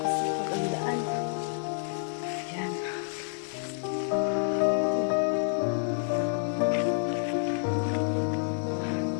Kapag ang daan. Ayan.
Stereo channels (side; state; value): right; silent; 59 dB below the other